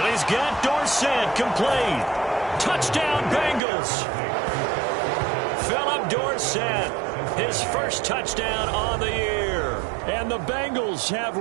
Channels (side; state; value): left; drops out; at 3.6 s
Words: he's got Dorsett complete. Touchdown Bengals. Philip Dorsett, his first touchdown on the year. And the Bengals have